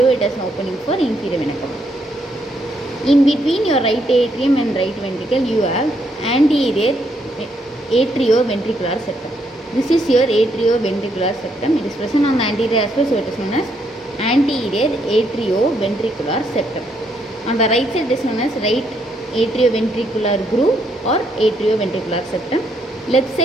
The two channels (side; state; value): both; normal; correlation 0.74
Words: it has opening for inferior vena cava. In between your right atrium and right ventricle, you have anterior atrioventricular septum. This is your atrioventricular septum. It is present on the anterior aspect, so it is known as anterior atrioventricular septum. On the right side, it is known as right atrioventricular groove or atrioventricular septum. Left